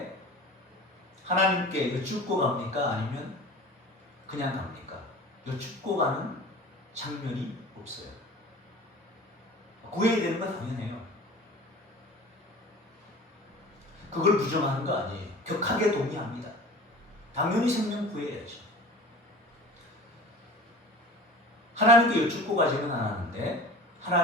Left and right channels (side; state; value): both; normal; correlation 0.39